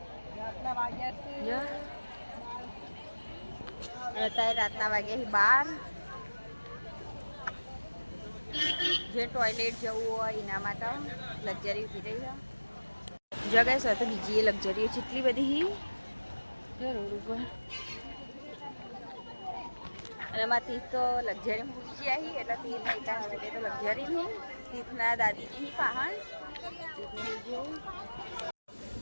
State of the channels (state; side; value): inverted; both; correlation -1.00